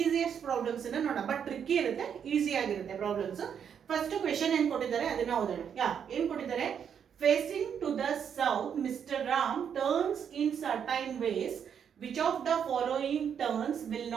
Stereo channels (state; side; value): quieter; left; 7.9 dB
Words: ಪ್ರಾಬ್ಲಮ್ಸ್ ಅನ್ನ ನೋಡೋಣ, ಬಟ್ ಟ್ರಿಕ್ಕಿ ಇರುತ್ತೆ, ಈಸಿ ಆಗಿರುತ್ತೆ ಪ್ರಾಬ್ಲಮ್ಸ್. ಫಸ್ಟ್ ಕ್ವೆಶ್ಚನ್ ಏನ್ ಕೊಟ್ಟಿದ್ದಾರೆ ಅದನ್ನ ಓದೋಣ. ಏನ್ ಕೊಟ್ಟಿದ್ದಾರೆ? Facing to the south mister Ram turns in certain ways, which of the following turns will